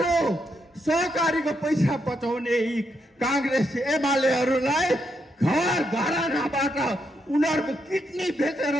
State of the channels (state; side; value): normal; both; correlation 0.79